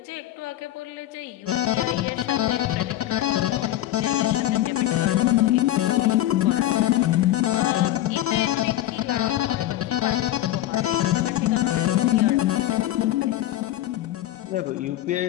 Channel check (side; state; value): right; quieter; 13.9 dB